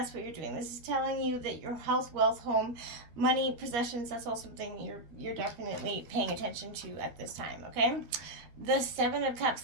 what you're doing. This is telling you that your health, wealth, home, money, possessions, that's all something you're definitely paying attention to at this time, okay? The Seven of Cups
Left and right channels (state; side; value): late; left; 13 ms